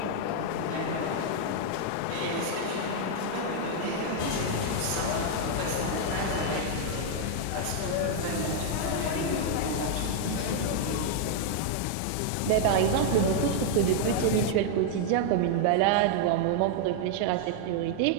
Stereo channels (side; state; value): both; different; correlation -0.01